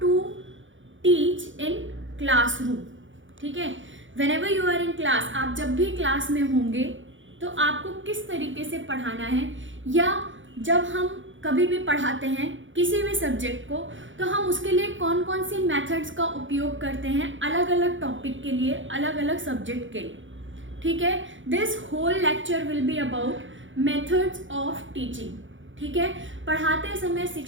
to teach in classroom. ठीक है, whenever you are in class, आप जब भी क्लास में होंगे तो आपको किस तरीके से पढ़ाना है, या जब हम कभी भी पढ़ाते हैं किसी भी सब्जेक्ट को तो हम उसके लिए कौन कौन सी मेथड्स का उपयोग करते हैं अलग अलग टॉपिक के लिए, अलग अलग सब्जेक्ट के लिए. ठीक है, this whole lecture will be about methods of teaching. ठीक है, पढ़ाते समय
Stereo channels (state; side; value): late; left; 0.56 ms